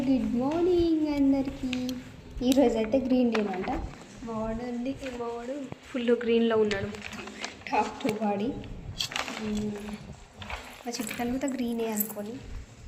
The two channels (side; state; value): both; identical; correlation 1.00